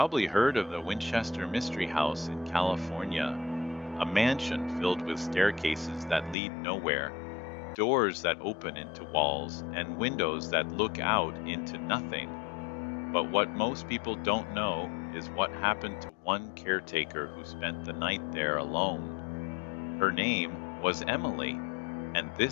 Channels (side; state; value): right; drops out; at 6.4 s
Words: heard of the Winchester Mystery House in California, a mansion filled with staircases that lead nowhere, doors that open into walls, and windows that look out into nothing. But what most people don't know is what happened to one caretaker who spent the night there alone. Her name was Emily, and